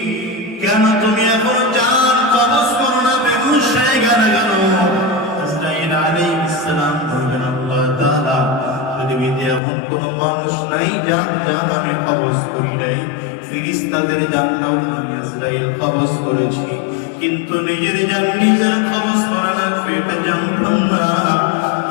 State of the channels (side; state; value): right; drops out; at 9.6 s